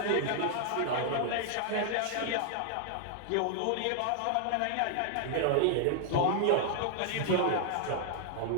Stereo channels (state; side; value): different; both; correlation 0.00